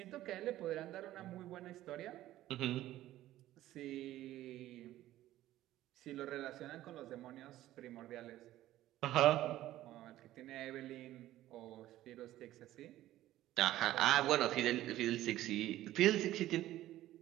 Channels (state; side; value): quieter; left; 14.5 dB